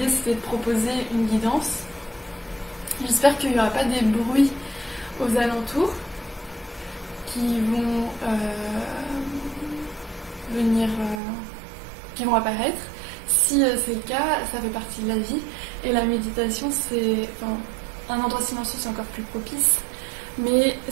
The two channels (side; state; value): left; drops out; at 11.2 s